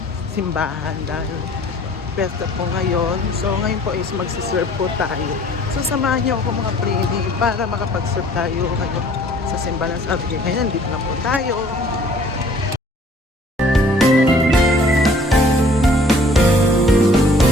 Simbahan dahil pesta po ngayon. So, ngayon po is magsiserve po tayo. So, samahan niyo ako mga Prini para makapag-serve tayo ngayon sa simbahan. Sabi ko, ngayon, dito na po tayo.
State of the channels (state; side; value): normal; both; correlation 0.55